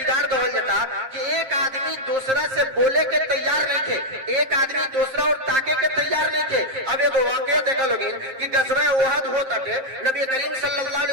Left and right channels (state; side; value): late; left; 7.5 ms